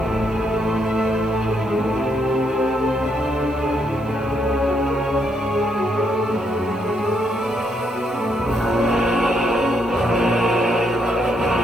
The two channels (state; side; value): noise; right; hiss, 29 dB below the sound